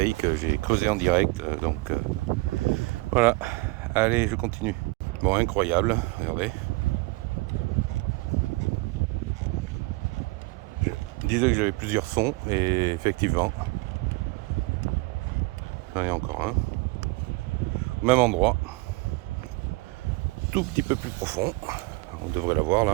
J'ai creusé en direct. Donc voilà. Allez, je continue. Bon, incroyable. Regardez. Je disais que j'avais plusieurs sons et effectivement, j'en ai encore un. Au même endroit, tout petit peu plus profond. On devrait l'avoir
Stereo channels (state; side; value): quieter; left; 24.3 dB